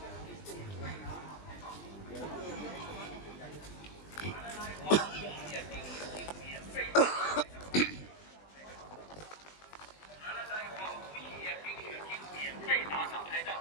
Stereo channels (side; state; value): right; late; 20 ms